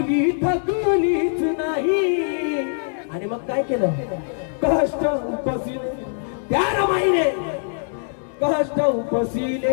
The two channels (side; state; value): right; silent; digital silence